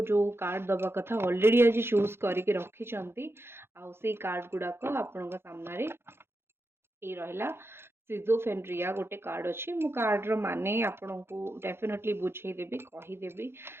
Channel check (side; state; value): left; late; 0.12 ms